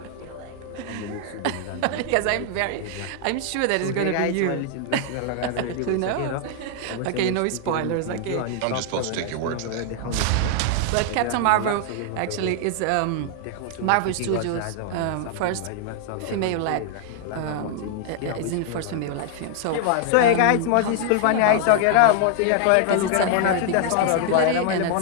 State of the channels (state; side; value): different; both; correlation 0.00